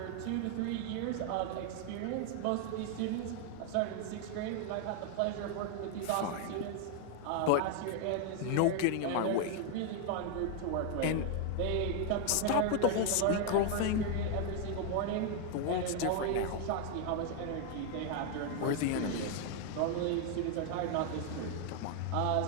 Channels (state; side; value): different; both; correlation 0.00